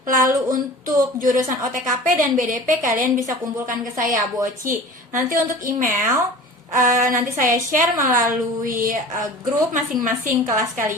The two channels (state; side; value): normal; both; correlation 0.40